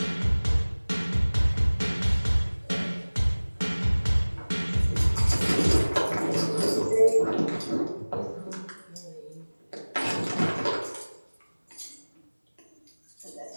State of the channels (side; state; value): both; inverted; correlation -1.00